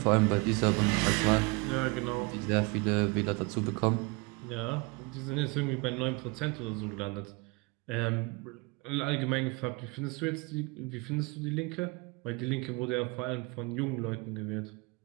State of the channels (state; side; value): quieter; left; 28.2 dB